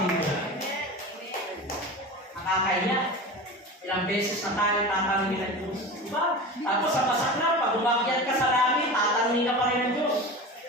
dito? Nakakaya. Ilang beses na tayo tatanungin ng Diyos. Diba? Tapos sa masak na, pag umakyat ka sa langit, tatanungin ka pa rin ng Diyos.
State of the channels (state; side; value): normal; both; correlation 0.30